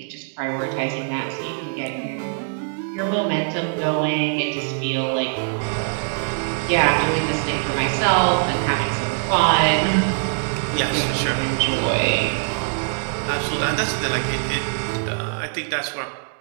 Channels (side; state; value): left; silent; digital silence